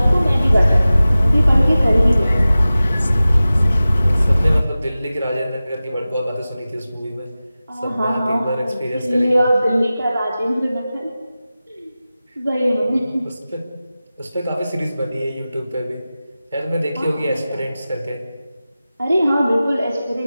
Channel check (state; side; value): inverted; both; correlation -0.96